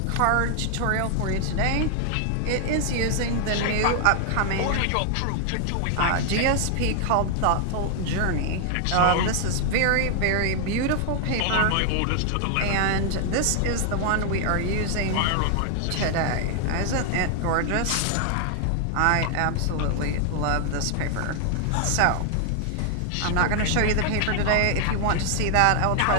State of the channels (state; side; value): different; both; correlation 0.00